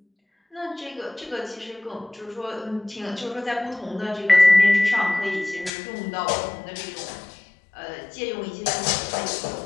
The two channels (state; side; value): drops out; right; at 5.7 s